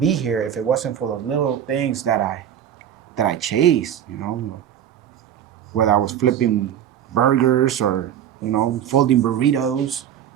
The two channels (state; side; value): quieter; left; 9.9 dB